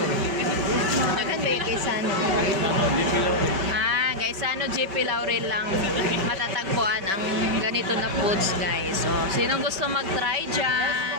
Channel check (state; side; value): late; left; 5.2 ms